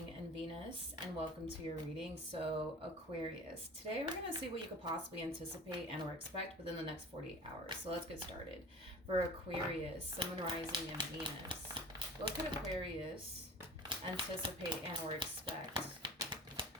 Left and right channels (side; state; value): both; normal; correlation 0.38